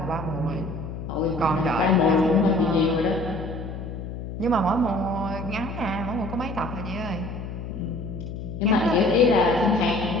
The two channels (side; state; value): left; noise; hum, 8 dB below the sound